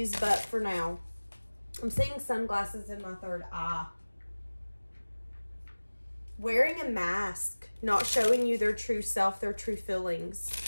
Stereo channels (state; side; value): inverted; both; correlation -1.00